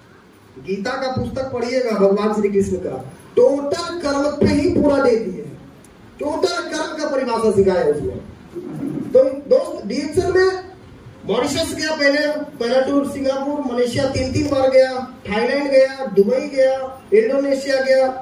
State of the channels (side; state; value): both; identical; correlation 1.00